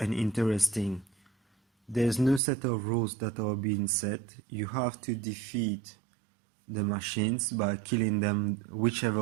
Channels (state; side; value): drops out; left; at 2.4 s